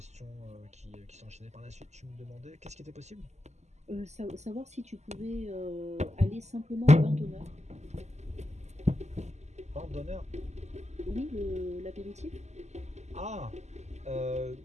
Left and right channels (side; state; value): left; late; 0.33 ms